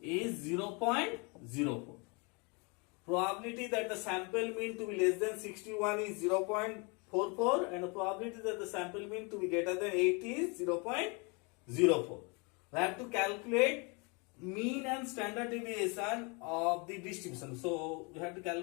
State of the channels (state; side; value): quieter; right; 31.4 dB